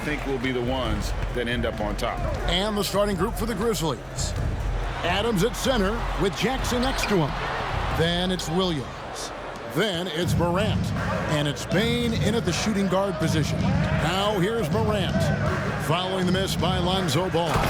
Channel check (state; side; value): identical; both; correlation 1.00